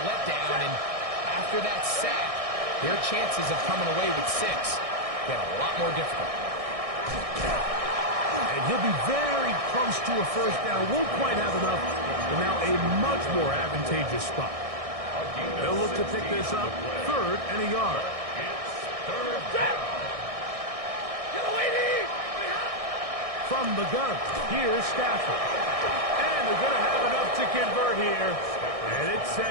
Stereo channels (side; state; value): left; late; 1.6 ms